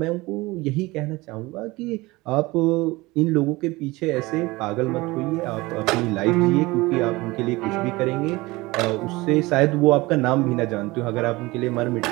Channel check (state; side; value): quieter; left; 21.5 dB